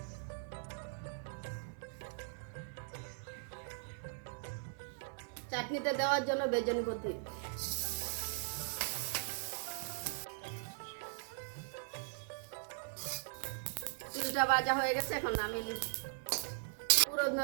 চাটনিতে দেওয়ার জন্য বেজনি পত্তি তিলটা ভাজা হয়ে গেছে, এখন নামিয়ে নিচ্ছি।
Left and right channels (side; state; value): left; silent; 51 dB below the other